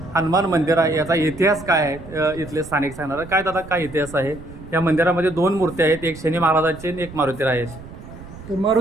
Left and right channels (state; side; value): noise; right; rumble, 16 dB below the sound